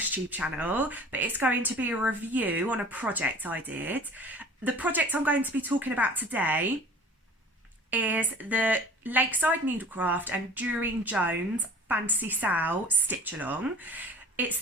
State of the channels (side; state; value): both; normal; correlation 0.45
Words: channel, but it's going to be a review on a project I did. The project I'm going to be talking about today is the Lakeside Needlecraft and Durine Jones Fantasy SAL stitch along. It's